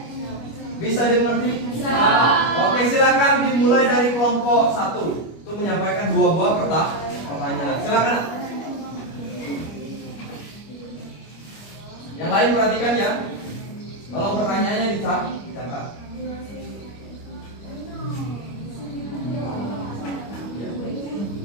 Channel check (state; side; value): late; right; 25 ms